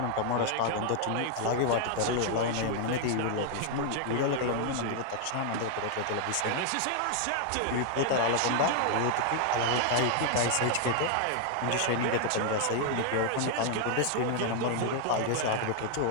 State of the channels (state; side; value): different; both; correlation 0.00